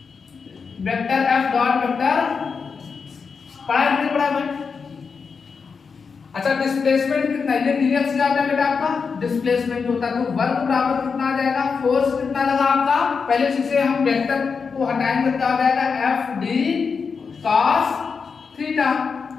वेक्टर F डॉट वेक्टर, पढ़ा नहीं पढ़ा भाई। अच्छा डिस्प्लेसमेंट कितना है, ये dx क्या होता है बेटा आपका, डिस्प्लेसमेंट होता है। तो वर्क बराबर कितना आ जाएगा, फोर्स कितना लगा आपका, पहले से हम वेक्टर को हटाएंगे क्या हो जाएगा, F d cos थीटा।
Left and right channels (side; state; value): right; quieter; 5.4 dB